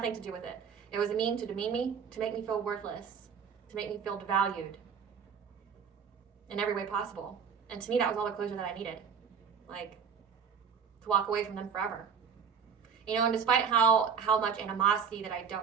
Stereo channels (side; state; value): left; quieter; 6.6 dB